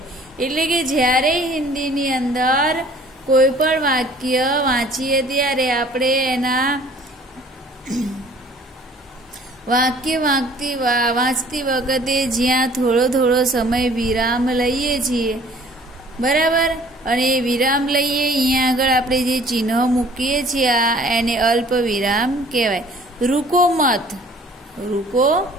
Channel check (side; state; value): both; normal; correlation 0.53